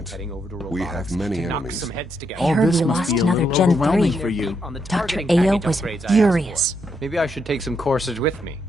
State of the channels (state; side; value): normal; both; correlation 0.78